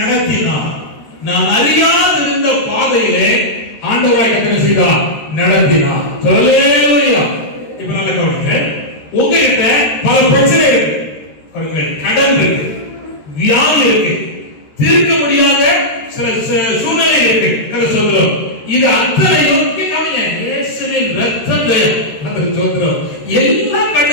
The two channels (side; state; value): right; late; 13 ms